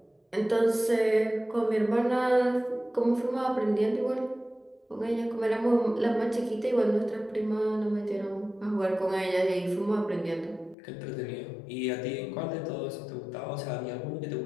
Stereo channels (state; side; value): drops out; right; at 10.8 s